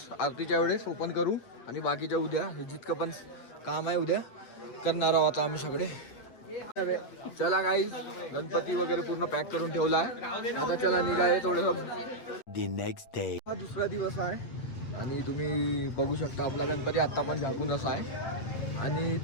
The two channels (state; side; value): late; right; 8.5 ms